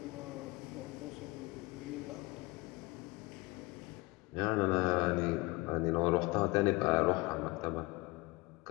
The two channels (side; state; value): right; quieter; 23.5 dB